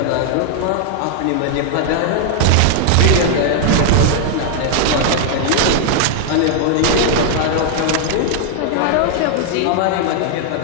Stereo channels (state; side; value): different; both; correlation 0.00